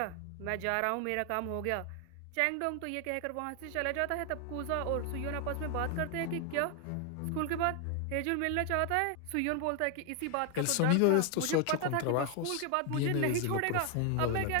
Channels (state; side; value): different; both; correlation 0.00